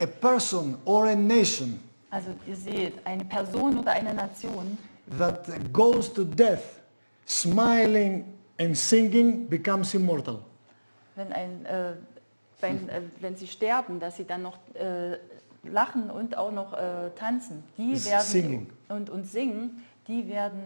person or a nation Also ihr seht, eine Person oder eine Nation, that goes to death smiling and singing becomes immortal. wenn sie sterben, dass sie dann noch lachen und auch noch tanzen, die Singing. werden und singen, die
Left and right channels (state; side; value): inverted; both; correlation -1.00